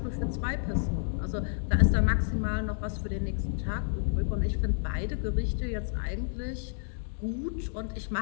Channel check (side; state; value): right; silent; digital silence